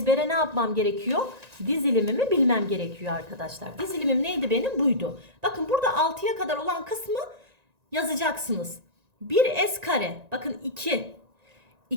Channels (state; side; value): late; left; 1.9 ms